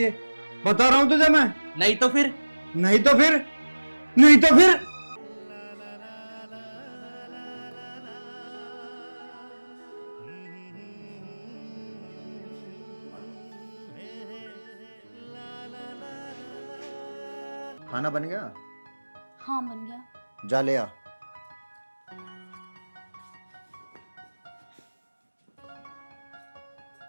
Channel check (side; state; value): both; inverted; correlation -1.00